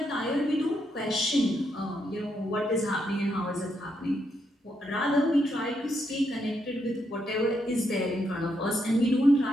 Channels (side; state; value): both; normal; correlation 0.79